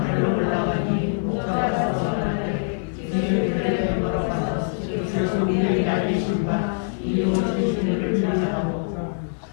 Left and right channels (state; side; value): silent; right; digital silence